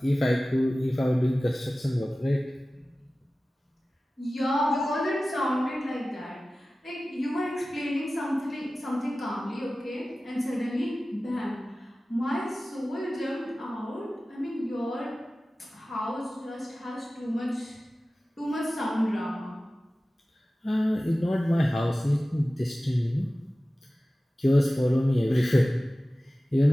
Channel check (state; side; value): normal; both; correlation 0.96